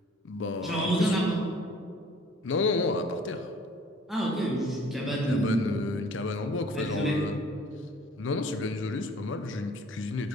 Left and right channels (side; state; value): both; normal; correlation 0.53